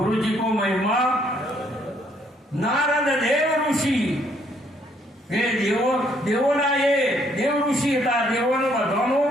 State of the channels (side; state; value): both; normal; correlation 0.68